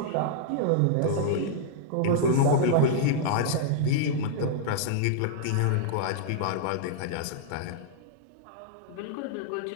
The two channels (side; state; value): both; different; correlation -0.01